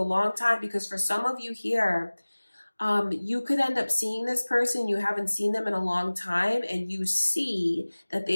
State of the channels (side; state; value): both; inverted; correlation -1.00